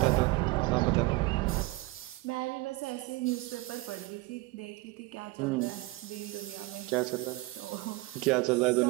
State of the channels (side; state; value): left; quieter; 21.2 dB